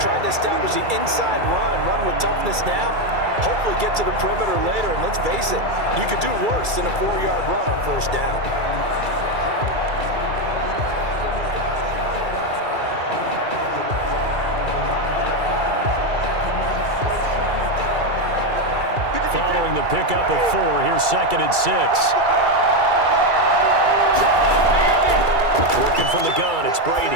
to establish the inside run with toughness now, hopefully get to the perimeter later. And let's face it, you could do worse than a 4-yard run on 1st down. Following the pickup of 4, here's 2nd and 6. Working from the gun, it's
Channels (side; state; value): left; late; 2.3 ms